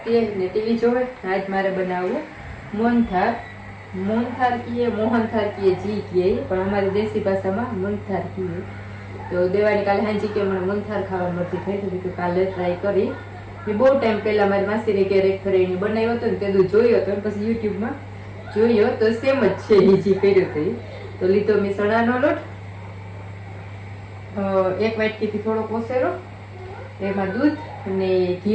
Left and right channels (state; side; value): identical; both; correlation 1.00